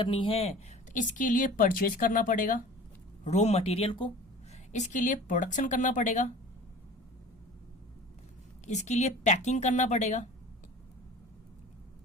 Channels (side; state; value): both; normal; correlation 0.41